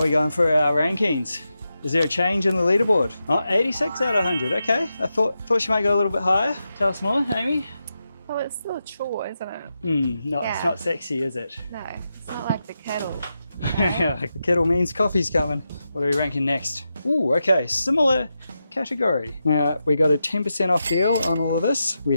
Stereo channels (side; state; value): both; inverted; correlation -0.88